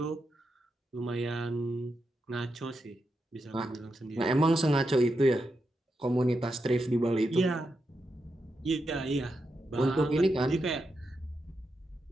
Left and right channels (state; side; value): normal; both; correlation 0.86